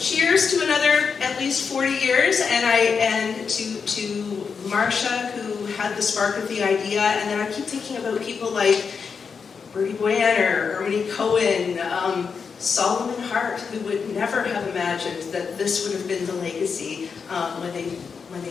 to another at least 40 years, and to Marcia, who had the spark of the idea. And then I keep thinking about people like Bertie Boyanner, Ernie Cohen, Solomon Hart, who would never have imagined that this would have been the legacy when they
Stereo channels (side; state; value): right; quieter; 5.8 dB